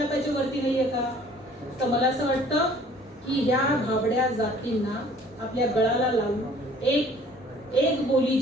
वरती नाहीये का? तर मला असं वाटतं की ह्या भाबड्या जातींना आपल्या गळाला लावून एक बोली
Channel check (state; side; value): normal; both; correlation 0.54